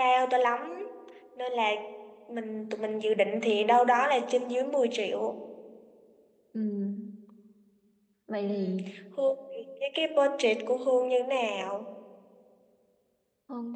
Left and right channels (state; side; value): identical; both; correlation 1.00